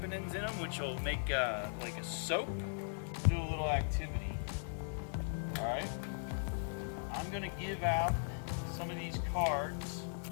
in them, which will make like a soap. Do a little activity. All right. I'm gonna give out some of these cards.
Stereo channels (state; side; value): silent; right; 52 dB below the other